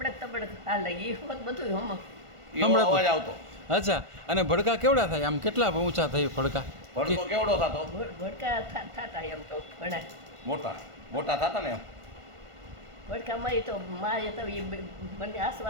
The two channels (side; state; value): left; late; 1.5 ms